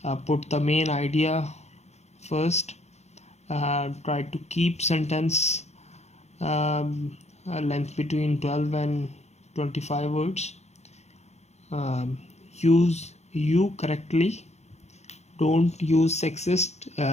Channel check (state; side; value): late; right; 0.32 ms